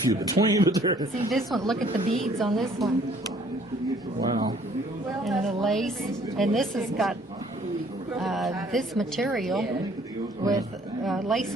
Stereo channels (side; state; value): both; normal; correlation 0.59